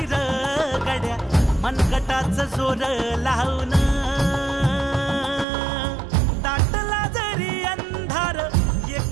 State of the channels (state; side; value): drops out; left; at 5.5 s